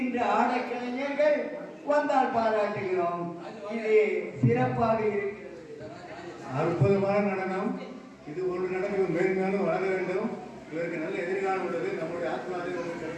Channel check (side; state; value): both; identical; correlation 1.00